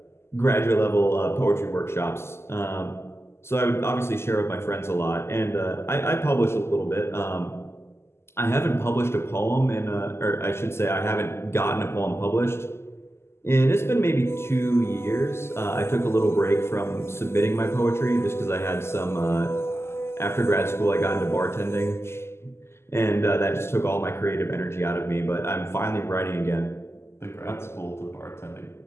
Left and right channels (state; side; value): late; right; 0.12 ms